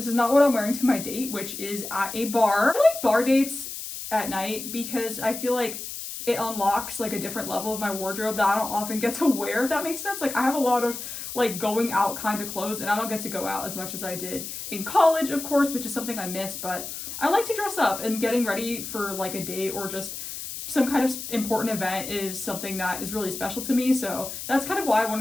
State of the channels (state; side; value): noise; left; hiss, 8 dB below the sound